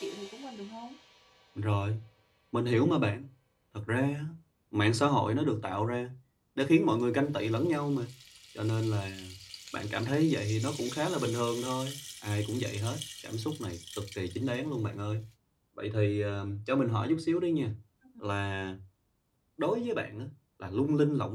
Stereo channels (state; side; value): identical; both; correlation 1.00